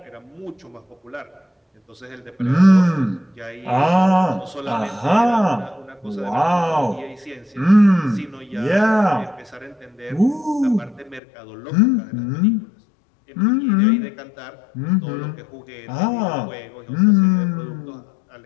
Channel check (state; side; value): drops out; right; at 11.2 s